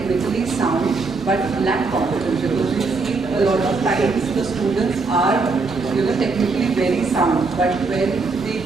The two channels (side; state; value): left; quieter; 4.1 dB